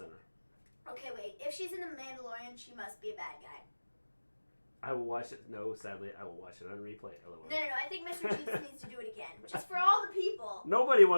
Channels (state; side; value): inverted; both; correlation -1.00